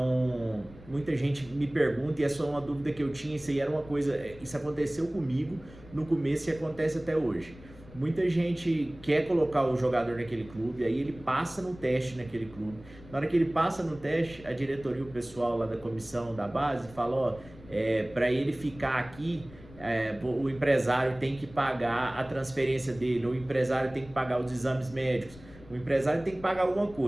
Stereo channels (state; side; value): noise; left; rumble, 20 dB below the sound